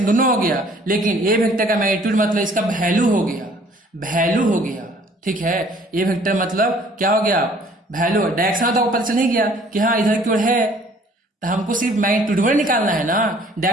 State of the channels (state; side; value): normal; both; correlation 0.56